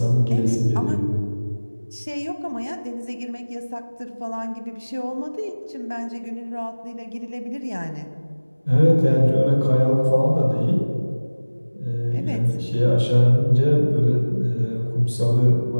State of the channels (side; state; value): both; inverted; correlation -1.00